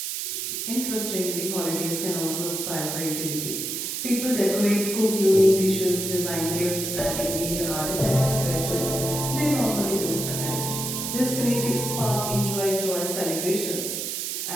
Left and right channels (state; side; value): noise; right; hiss, 3 dB below the sound